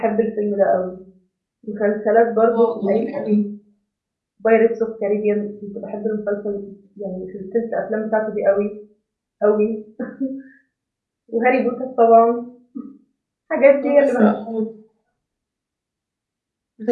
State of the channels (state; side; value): identical; both; correlation 1.00